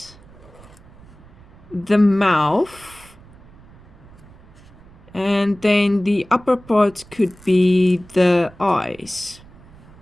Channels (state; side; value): noise; right; rumble, 23 dB below the sound